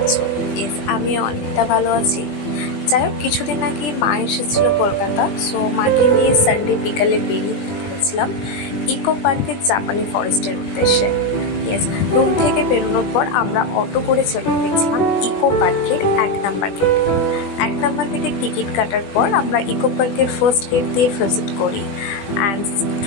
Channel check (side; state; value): right; late; 20 ms